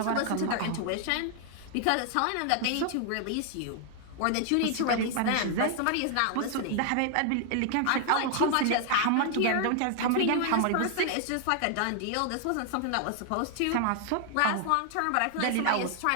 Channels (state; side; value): different; both; correlation 0.00